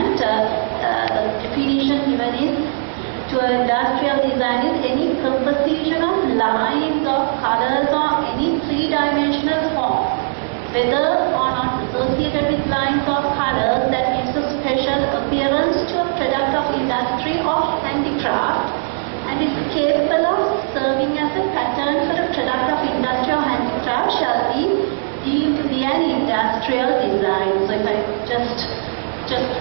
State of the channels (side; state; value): left; silent; 67 dB below the other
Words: The definition given is to industrial design is any composition of lines or colors or any three-dimensional form, whether or not associated with lines or colors, that gives a special appearance to a product of industry or handicraft and is capable of serving as a pattern for a product of industry or handicraft shall be deemed to be an industrial design. So if I just